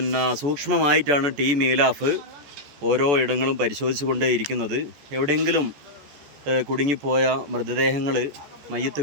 സൂക്ഷ്മമായിട്ടാണ് ടീം ഈലാഫ് ഓരോ ഇടങ്ങളും പരിശോധിച്ചു കൊണ്ടേയിരിക്കുന്നത്. എവിടെയെങ്കിലും കുടുങ്ങിപ്പോയ മൃതദേഹങ്ങൾ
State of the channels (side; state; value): left; late; 14 ms